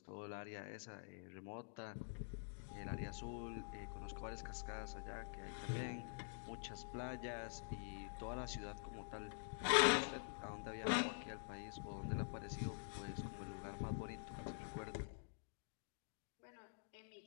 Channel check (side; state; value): right; silent; digital silence